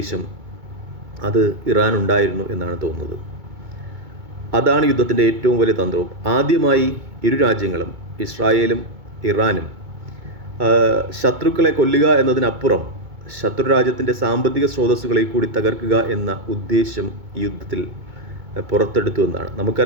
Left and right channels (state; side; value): late; left; 2.2 ms